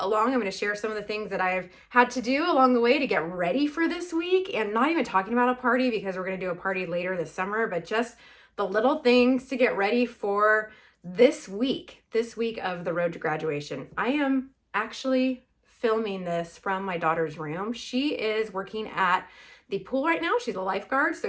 I'm going to share some of the things that I've had to do along the way to get ready for this week, and not even talking about a party because we're going to do a party later this summer, but just the little things to get ready for this week of the road to graduation. I am actually filming this from my daughter's room. She is working at the pool right now. She's a lifeguard,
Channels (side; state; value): both; identical; correlation 1.00